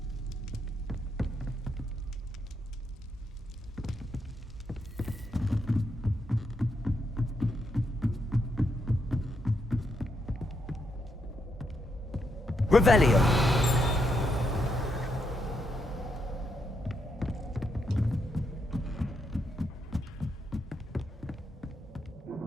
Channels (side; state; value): both; normal; correlation 0.79